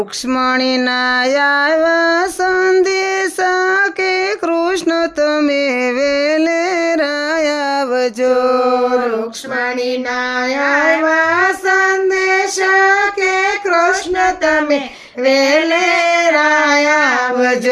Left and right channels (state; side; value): identical; both; correlation 1.00